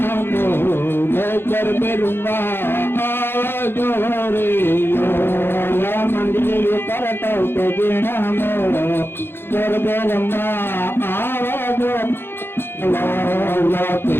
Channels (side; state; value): right; late; 0.11 ms